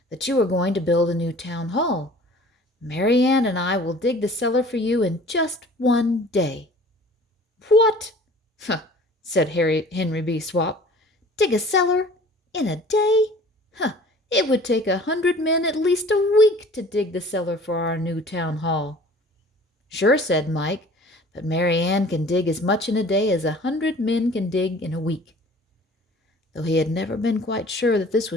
"that you are going to build a new town hall. Mary Ann and I will dig the cellar for you in just one day." "What?" said Henry B. Swap. "Dig a cellar in a day? It would take 100 men at least a week to dig the cellar for our new town hall." "Sure," said Mike, "but Mary Ann can dig as much in a day as 100 men can dig in a week." Though he had never been quite sure that this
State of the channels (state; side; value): normal; both; correlation 0.47